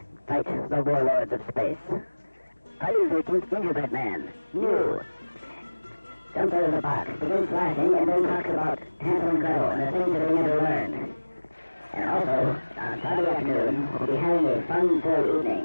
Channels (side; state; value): both; inverted; correlation -1.00